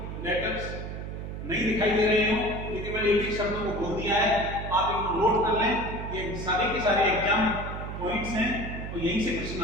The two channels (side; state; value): right; noise; hum, 7 dB below the sound